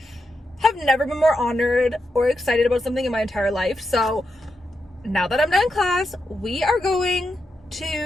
have never been more honored or excited about something in my entire life. So now that I'm done class, we are going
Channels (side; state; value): both; normal; correlation 0.86